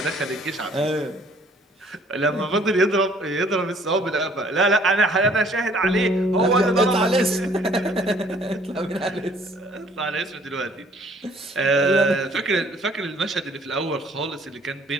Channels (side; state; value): both; normal; correlation 0.58